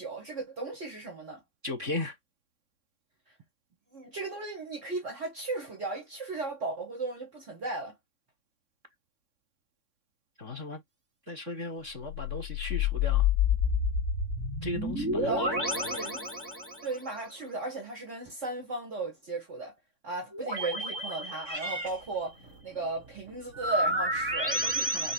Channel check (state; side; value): late; left; 3.6 ms